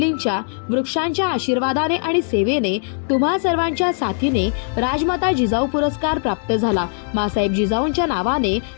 वृक्षांच्या आशीर्वादाने आणि सेवेने तुम्हा सर्वांच्या साथीने राजमाता जिजाऊ पुरस्कार प्राप्त झाला। मासाहेब जिजाऊंच्या नावाने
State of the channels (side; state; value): right; silent; 65 dB below the other